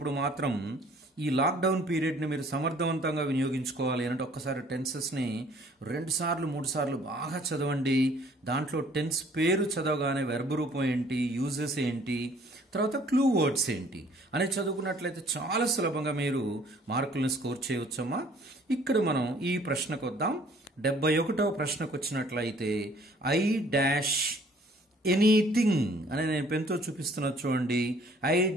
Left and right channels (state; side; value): normal; both; correlation 0.57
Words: మాత్రం ఈ లాక్డౌన్ పీరియడ్ని మీరు సమర్థవంతంగా వినియోగించుకోవాలి అంటే ఒక్కసారి టెన్సెస్ని 2 సార్లు 3 సార్లు బాగా చదవండి. దాంట్లో టెన్స్ పేరు చదవగానే వెర్బ్ రూపం ఏంటి, యూజెస్ ఏంటి, తర్వాత క్లూ వర్డ్స్ ఏంటి అని చదువుకున్నట్లయితే చాలా సులభంగా మీరు మార్కులను స్కోర్ చేయవచ్చమ్మా. ఇక్కడ మనం ఈ ప్రశ్నకు వద్దాం. 71వ ప్రశ్నకు వచ్చినట్లయితే ఎనీథింగ్ అని నేను పెన్తో చూపిస్తున్నా చూడండి.